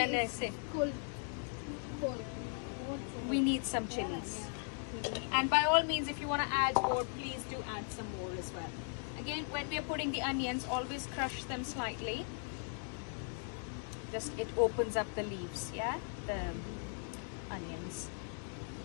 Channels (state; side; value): silent; right; 52 dB below the other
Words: I say. Cool. We need some chilies. And by all means, if you want to add more, please do add some more as well. Again, when we are putting the onions, always crush them slightly. Just, it opens up the leaves, yeah? The onions.